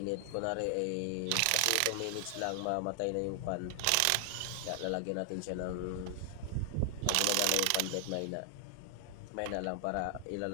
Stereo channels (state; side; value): different; both; correlation 0.00